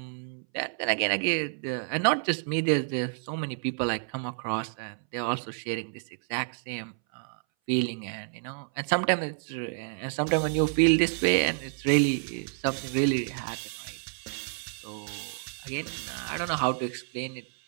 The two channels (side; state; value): left; silent; 58 dB below the other